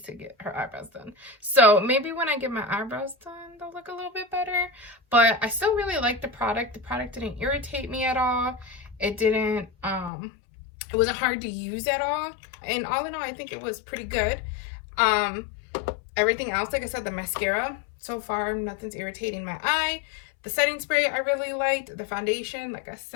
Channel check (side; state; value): right; drops out; at 10.1 s